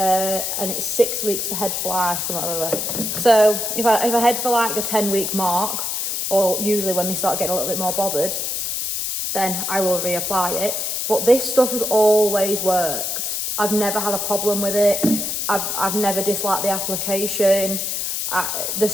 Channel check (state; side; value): noise; left; hiss, 2 dB below the sound